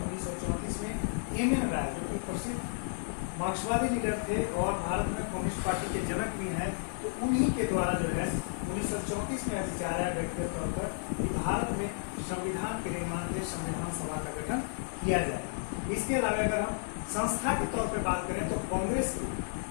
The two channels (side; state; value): right; silent; 56 dB below the other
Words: 1934 में एमएन राय, जो कि प्रसिद्ध मार्क्सवादी लीडर थे और भारत में कम्युनिस्ट पार्टी के जनक भी हैं, तो उन्हीं के द्वारा जो है 1934 में विचार आया व्यक्तिगत तौर पर कि भारत में संविधान के निर्माण के लिए संविधान सभा का गठन किया जाए। इसके अलावा अगर हम संस्था के तौर पर बात करें तो कांग्रेस की